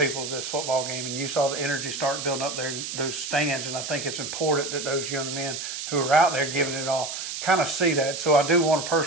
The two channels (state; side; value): noise; right; hiss, 6 dB below the sound